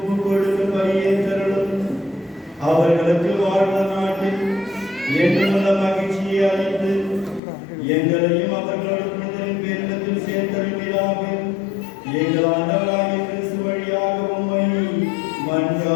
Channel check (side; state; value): right; drops out; at 7.4 s